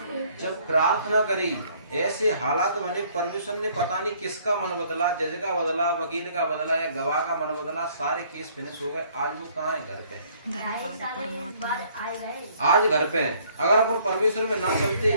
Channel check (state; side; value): inverted; both; correlation -0.61